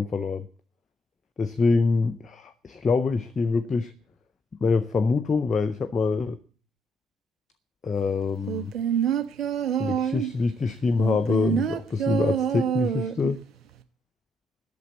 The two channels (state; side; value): normal; both; correlation 0.75